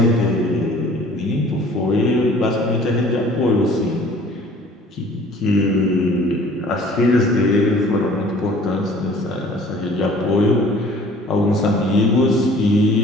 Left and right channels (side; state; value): both; normal; correlation 0.51